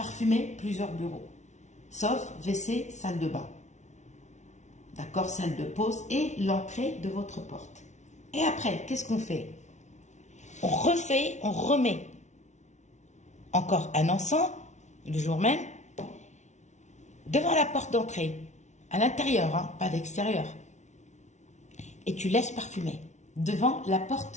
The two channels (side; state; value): right; late; 0.33 ms